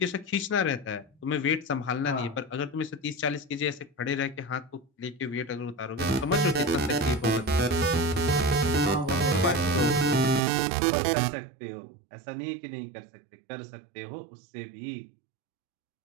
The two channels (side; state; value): left; drops out; at 10.4 s